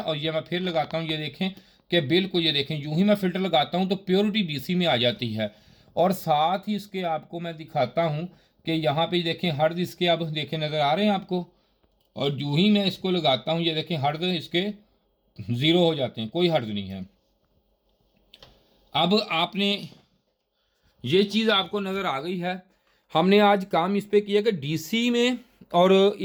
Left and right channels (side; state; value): both; identical; correlation 1.00